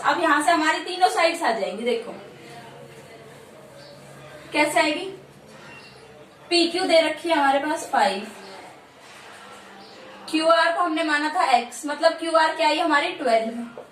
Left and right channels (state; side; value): identical; both; correlation 1.00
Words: अब यहां से हमारी तीनों साइड्स आ जाएंगी। देखो कैसे आएगी, पी क्यू दे रखी है हमारे पास 5, क्यू आर को हमने माना था x, मतलब क्यू आर क्या आई हमारी